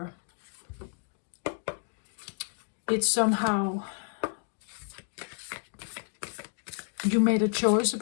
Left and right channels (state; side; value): silent; right; 57 dB below the other